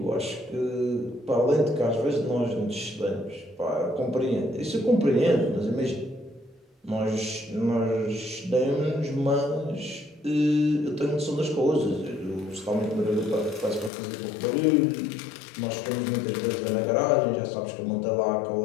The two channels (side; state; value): right; drops out; at 13.9 s